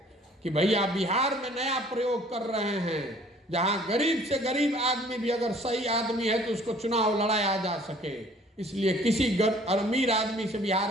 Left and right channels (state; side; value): normal; both; correlation 0.55